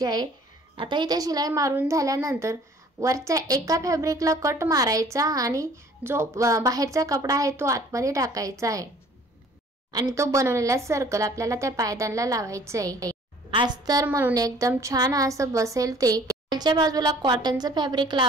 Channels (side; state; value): both; normal; correlation 0.53